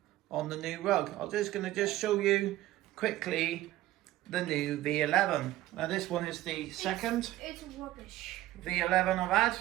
on the new rug. I'm just going to show you quickly the new V11. Now this one is the second it's rubbish V11 I've had.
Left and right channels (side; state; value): left; quieter; 15.4 dB